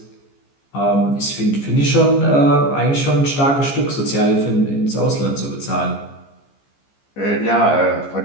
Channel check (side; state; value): right; late; 14 ms